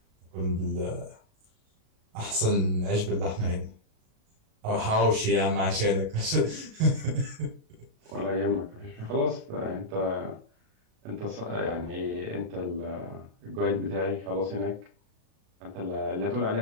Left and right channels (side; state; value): left; late; 37 ms